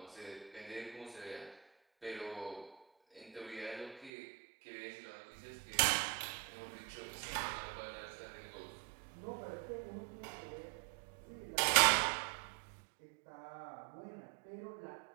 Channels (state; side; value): drops out; left; at 4.1 s